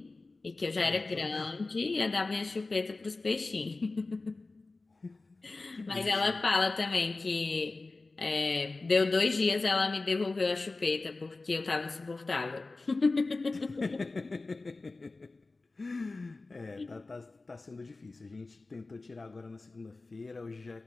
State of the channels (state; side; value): quieter; right; 3.4 dB